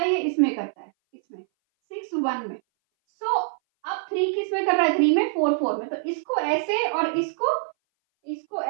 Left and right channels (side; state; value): left; silent; 59 dB below the other